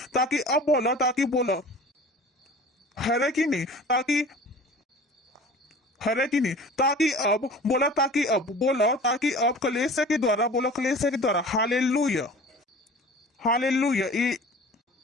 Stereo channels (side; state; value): both; normal; correlation 0.41